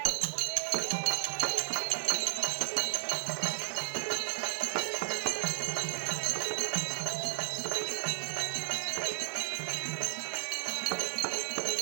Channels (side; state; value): left; silent; digital silence